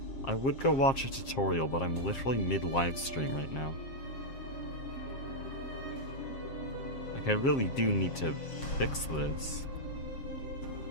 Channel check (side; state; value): right; late; 7.5 ms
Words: I would go watch a tutorial, but I'm literally mid-livestream right now. Like, I really do need to fix this.